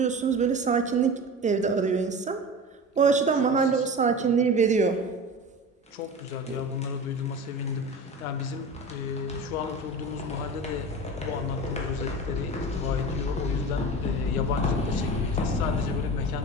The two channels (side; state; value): both; normal; correlation 0.32